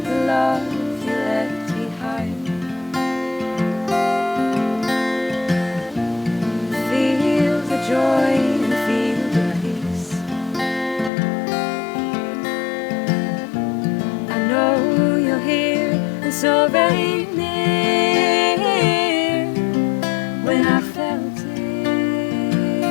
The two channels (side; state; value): right; drops out; at 11.1 s